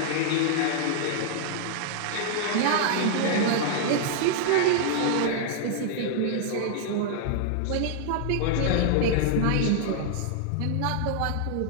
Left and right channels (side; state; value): both; different; correlation -0.01